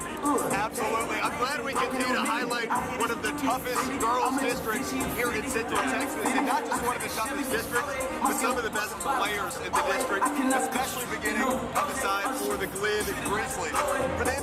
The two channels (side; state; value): both; identical; correlation 1.00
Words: Absolutely. I'm glad we continue to highlight one of the toughest girls districts here in Central Texas, and not just one of the toughest districts, but some of the best players in the district, especially beginning on the side for the Glen Grizzlies. For